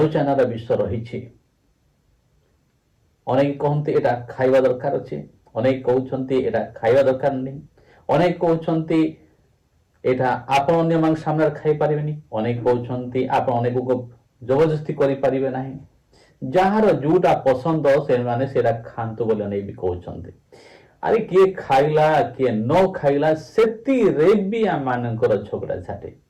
रा विषय रही अनेक कहते एटा खाइबा दरकार अछि अनेक कहउछन्ती एटा खाइबा दरकार नहीं अनेक कहउछन्ती एटा आपण अन्य मान सामने खाइ परिबेनी अनेक कहउछन्ती आपण अनेक को जबरदस्ती करि परिबे नाही जहार जोटा पसंद से माने सेरा खांतु बोले नहीं भी कहउछन्ती अरे किए खाइला किए न खाइला सेति रे भी आ मानकर झगड़ा झाटे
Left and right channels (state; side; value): identical; both; correlation 1.00